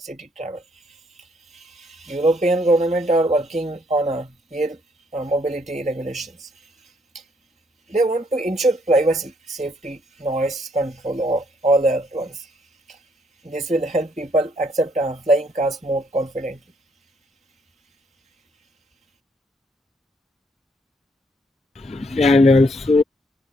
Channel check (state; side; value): normal; both; correlation 0.70